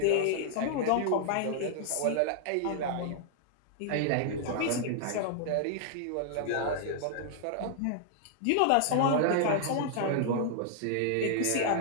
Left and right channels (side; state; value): both; different; correlation -0.01